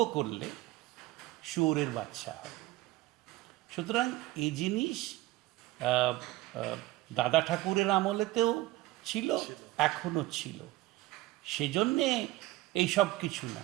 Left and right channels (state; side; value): quieter; left; 17.6 dB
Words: করলে শুয়োরের বাচ্চা হয়। সুতরাং এই জিনিস দাদা ঠাকুরের আমলেতেও ছিল, এখনো ছিল। সেজন্যে এইসব কিছু না।